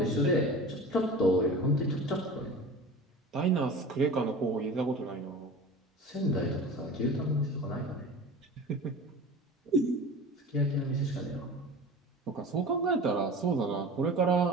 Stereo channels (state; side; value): normal; both; correlation 0.36